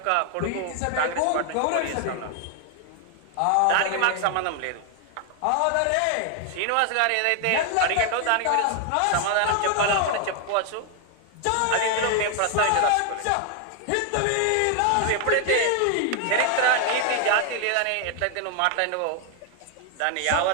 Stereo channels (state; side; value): different; both; correlation 0.01